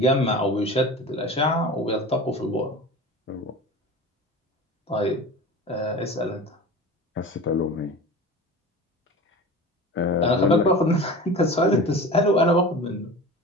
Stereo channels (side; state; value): both; normal; correlation 0.34